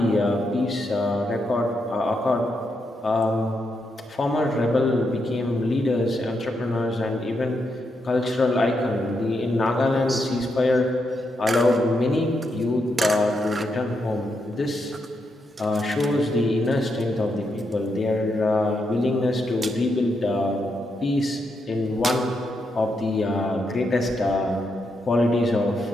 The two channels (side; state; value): both; normal; correlation 0.82